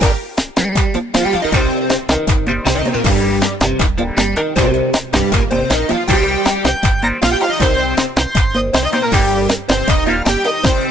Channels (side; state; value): both; normal; correlation 0.74